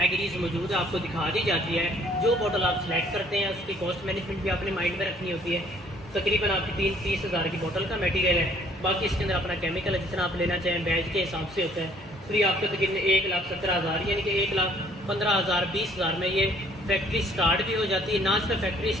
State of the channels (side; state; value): both; normal; correlation 0.60